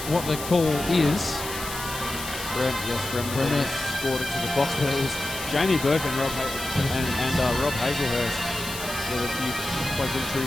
what the call is. Bremner scored it to the box, but it was Jamie Burke and Rob Hazelhurst with a few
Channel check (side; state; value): left; noise; hiss, 9 dB below the sound